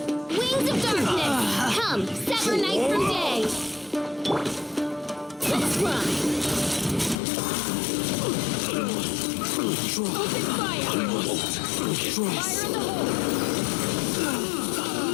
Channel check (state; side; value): drops out; right; at 7.2 s